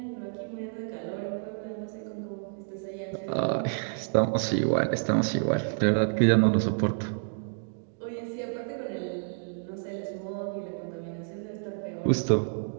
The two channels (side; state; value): left; silent; digital silence